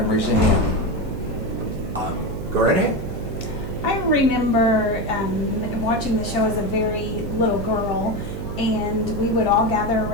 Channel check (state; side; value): noise; right; hum, 7 dB below the sound